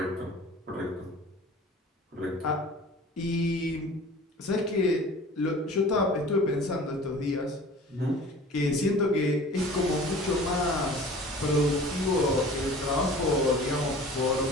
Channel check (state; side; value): normal; both; correlation 0.43